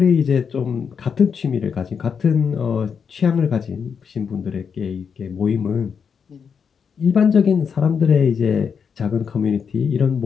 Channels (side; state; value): right; quieter; 6.6 dB